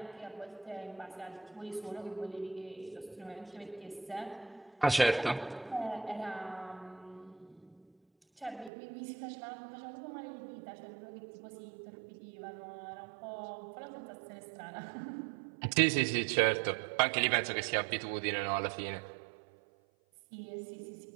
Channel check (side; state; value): left; drops out; at 8.7 s